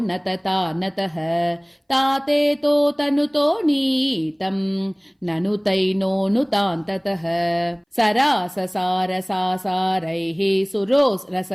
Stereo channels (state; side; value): identical; both; correlation 1.00